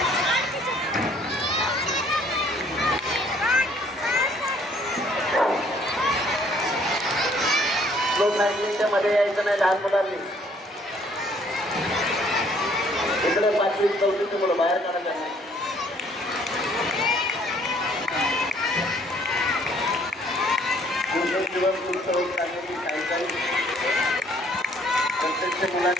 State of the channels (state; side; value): normal; both; correlation 0.62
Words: लोक नाईन्टीनच्या मध्ये यायचं नाही लहान मुलांनी. इकडे 5वी 4वीची मुलं बाहेर काढायचं नाही. दिवस उत्सव चाललेली सायकल प्रत्यक्ष